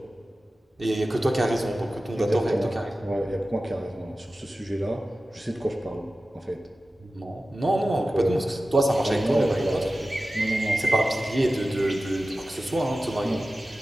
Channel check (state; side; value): normal; both; correlation 0.95